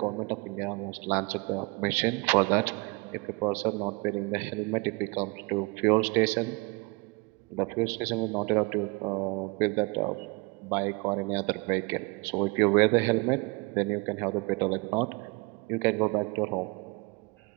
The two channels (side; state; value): left; quieter; 27.5 dB